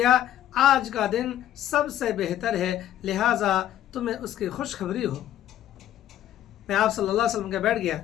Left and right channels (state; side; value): quieter; right; 11.9 dB